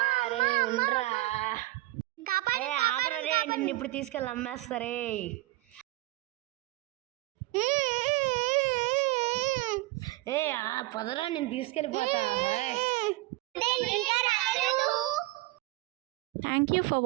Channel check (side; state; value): left; quieter; 19.4 dB